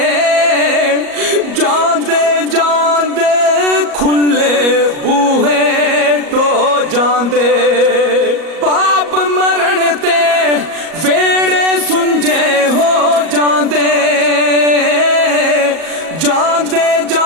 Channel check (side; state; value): left; late; 38 ms